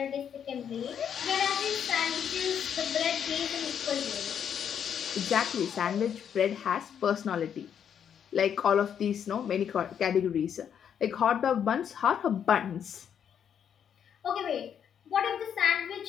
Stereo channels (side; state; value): right; quieter; 8.4 dB